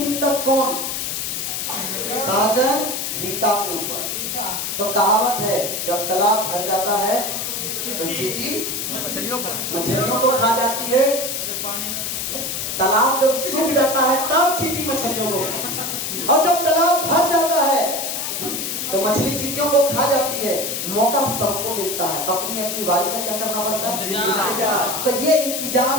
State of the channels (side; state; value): left; noise; hiss, 3 dB below the sound